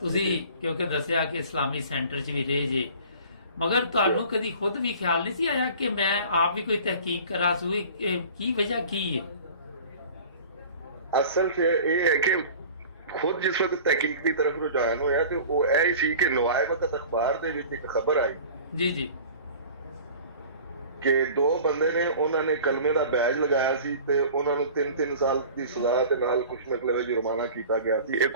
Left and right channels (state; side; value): inverted; both; correlation -0.43